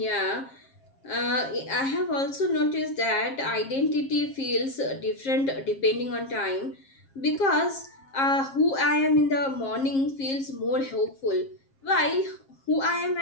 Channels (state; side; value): late; right; 7.5 ms